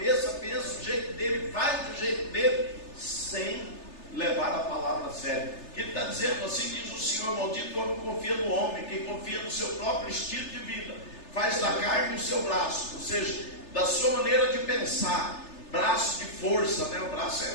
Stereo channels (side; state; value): right; late; 3.3 ms